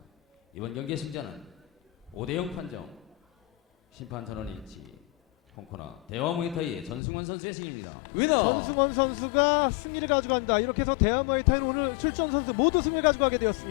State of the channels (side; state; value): right; drops out; at 7.0 s